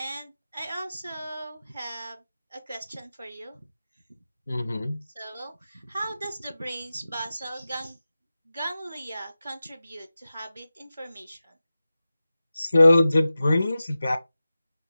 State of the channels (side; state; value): both; inverted; correlation -0.95